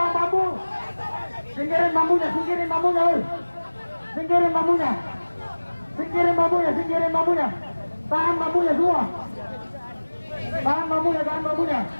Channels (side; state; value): both; inverted; correlation -1.00